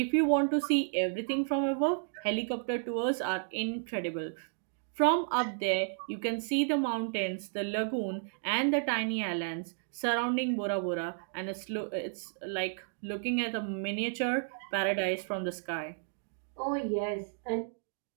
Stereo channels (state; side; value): silent; left; digital silence